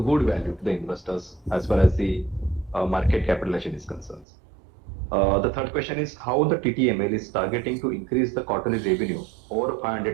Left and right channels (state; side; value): drops out; left; at 4.2 s